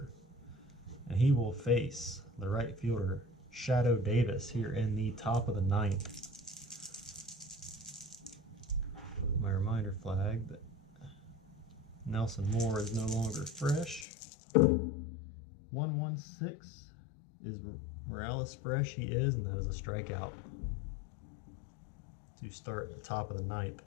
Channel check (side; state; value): right; drops out; at 14.1 s